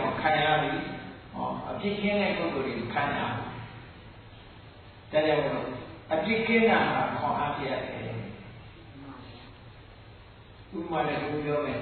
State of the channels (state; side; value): identical; both; correlation 1.00